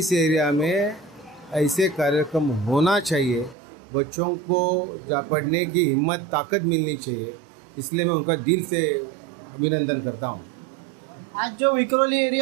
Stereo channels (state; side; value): drops out; left; at 3.6 s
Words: एरिया में ऐसे कार्यक्रम होना चाहिए। बच्चों को पढ़ने की हिम्मत, ताकत मिलनी चाहिए, इसलिए मैं उनका दिल से अभिनंदन करता हूँ। आज जो विक्रोली